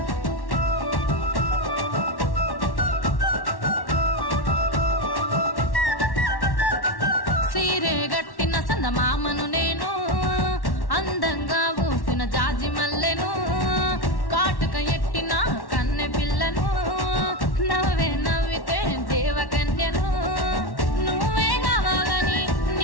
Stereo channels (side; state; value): right; late; 1.1 ms